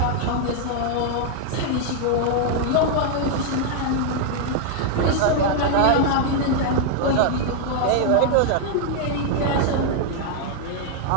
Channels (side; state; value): both; different; correlation 0.00